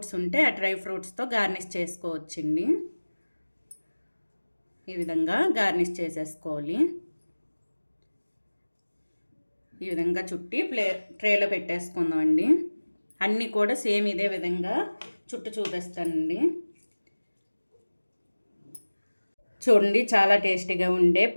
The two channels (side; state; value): both; inverted; correlation -1.00